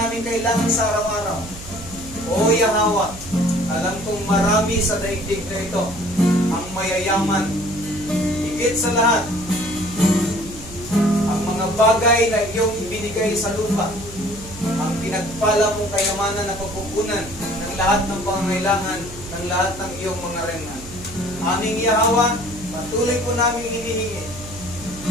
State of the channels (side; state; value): right; noise; hum, 15 dB below the sound